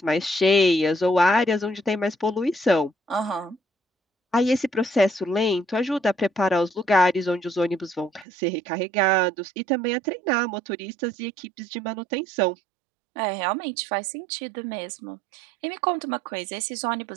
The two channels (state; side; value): drops out; left; at 8.2 s